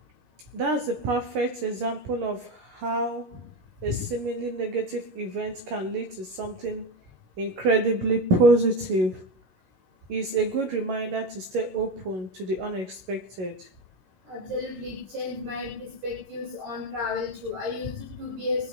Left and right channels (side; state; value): left; late; 11 ms